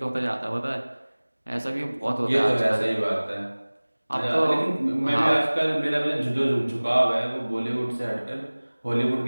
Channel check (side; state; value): both; inverted; correlation -1.00